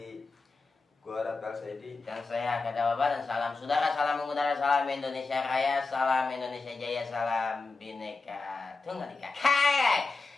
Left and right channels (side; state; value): right; quieter; 3.9 dB